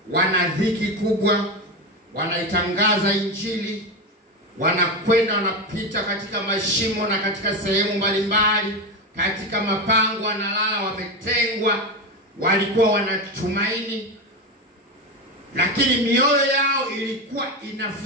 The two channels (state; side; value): normal; both; correlation 0.16